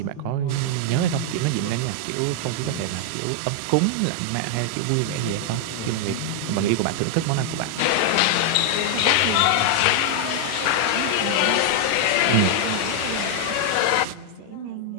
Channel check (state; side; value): different; both; correlation 0.00